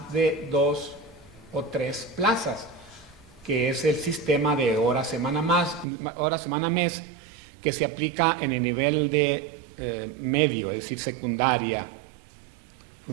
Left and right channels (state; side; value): drops out; left; at 5.9 s